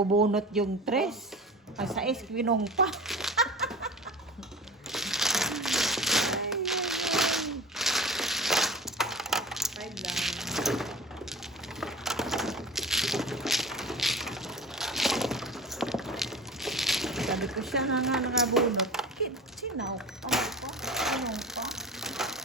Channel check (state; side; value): normal; both; correlation 0.38